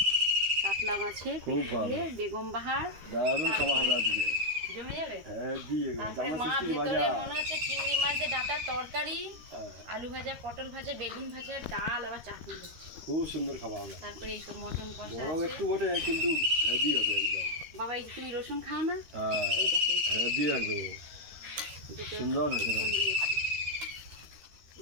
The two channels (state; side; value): late; left; 13 ms